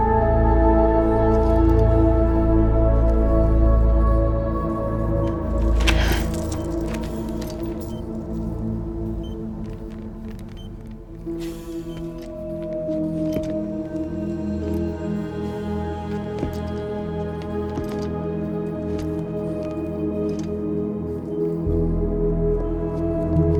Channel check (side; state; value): both; identical; correlation 1.00